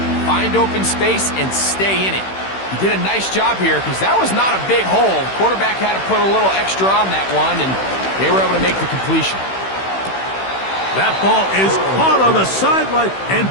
find open space and stay in it. He did a nice job here because that was not a big hole. The quarterback had to put a little extra on that one, and they were able to make the completion. That ball is caught on the sideline and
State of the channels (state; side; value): late; right; 16 ms